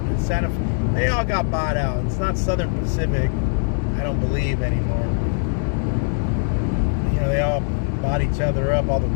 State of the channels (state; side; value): silent; right; digital silence